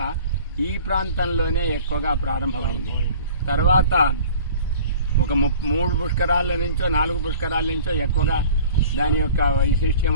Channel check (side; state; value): both; inverted; correlation -0.46